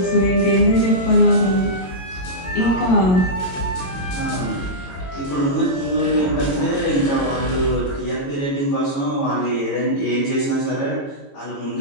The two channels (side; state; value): right; late; 22 ms